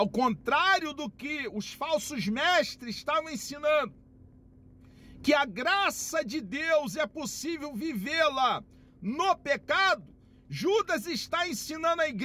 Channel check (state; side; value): identical; both; correlation 1.00